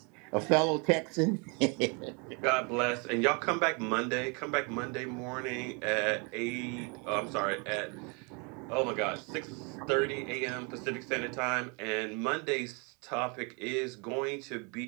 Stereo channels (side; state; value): left; quieter; 33.1 dB